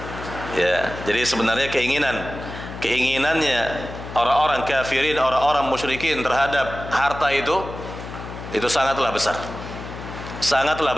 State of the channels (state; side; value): noise; left; hum, 11 dB below the sound